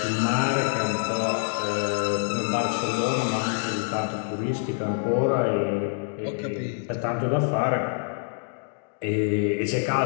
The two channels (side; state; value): right; silent; 57 dB below the other